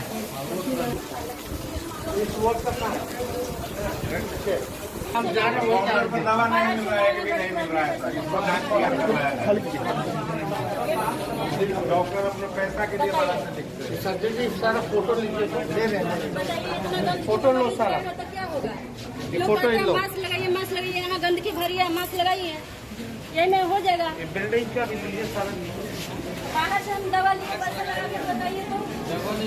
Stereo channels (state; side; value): identical; both; correlation 1.00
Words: इस वक्त का हम जा रहे हैं, दवा नहीं मिल रहा है, कि नहीं मिल रहा है। डॉक्टर अपने पैसा के लिए बाहर से लिखते हैं। सर्जन जी सारा फोटो लीजिए, दे रहे हैं, फोटो लो सारा, फोटो ही लो। मास्क लगाइए, मास्क लगाइए, यहाँ गंदगी भरी है, मास्क लगाइए, ये में हो जाएगा। बिल्डिंग का भी लीजिए सारा। बाहर से हम दवा लिए, पैसा लगा के बताइए तो दवा